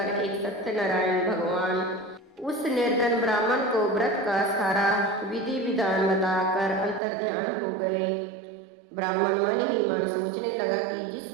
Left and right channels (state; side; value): drops out; left; at 7.0 s